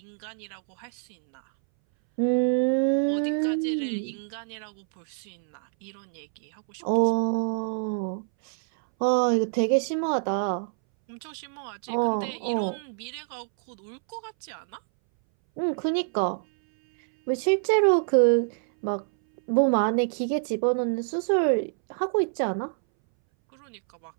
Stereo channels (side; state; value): left; silent; 61 dB below the other